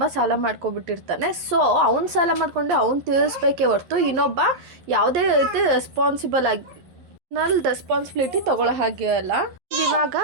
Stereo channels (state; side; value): late; left; 11 ms